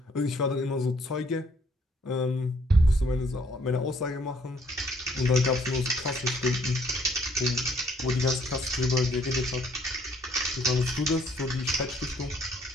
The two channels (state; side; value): normal; both; correlation 0.64